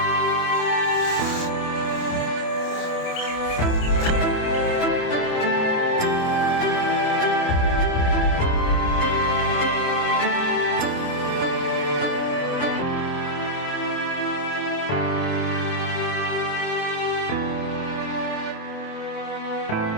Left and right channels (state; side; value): late; right; 28 ms